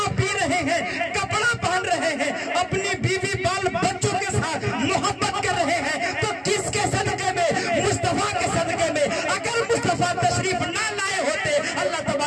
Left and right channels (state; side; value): identical; both; correlation 1.00